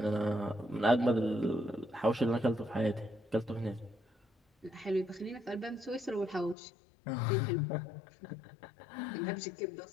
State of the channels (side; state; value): right; drops out; at 6.6 s